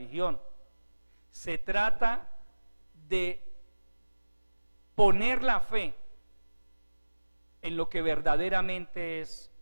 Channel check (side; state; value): both; inverted; correlation -1.00